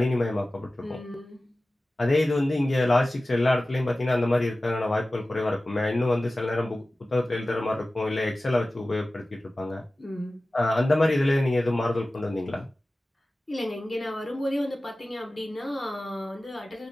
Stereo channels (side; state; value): both; normal; correlation 0.96